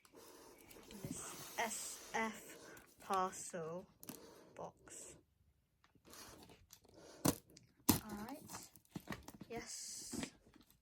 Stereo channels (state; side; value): identical; both; correlation 1.00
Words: This SF parcel box. Alright. Yes.